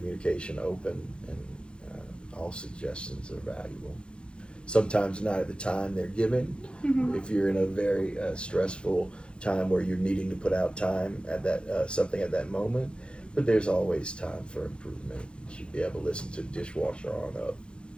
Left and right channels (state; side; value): late; right; 0.055 ms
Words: open, and all suggestions are valuable. Sometimes not at the time they're given. If you're in a very stressful time where you're needing to put out time at that something at that moment, but there's always time for improvement. You should be able to listen to dishwasher on up.